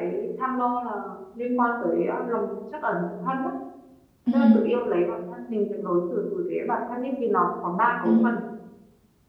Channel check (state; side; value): identical; both; correlation 1.00